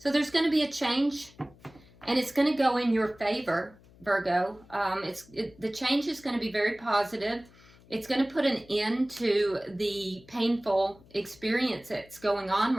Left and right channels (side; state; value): left; noise; hum, 26 dB below the sound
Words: there's going to be a change. And it's going to go in your favor, Virgo. The change is going to be very positive. It's going to put an end to the painful experience that's going on